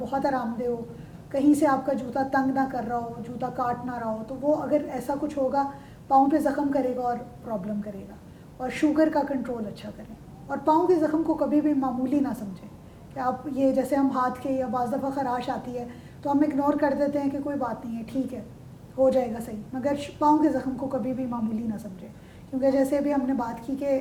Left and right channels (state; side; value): identical; both; correlation 1.00